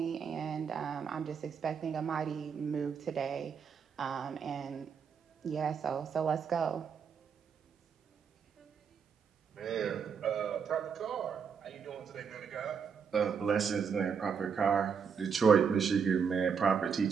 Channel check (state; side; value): quieter; left; 6.5 dB